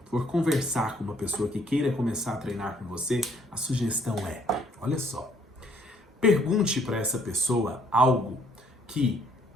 for conversar com uma pessoa que queira começar a treinar com você, a sugestão é, olha só, pergunte para essa pessoa algo que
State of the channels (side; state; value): both; normal; correlation 0.65